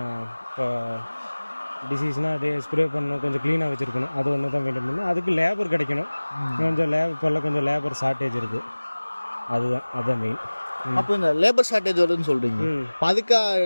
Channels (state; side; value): inverted; both; correlation -1.00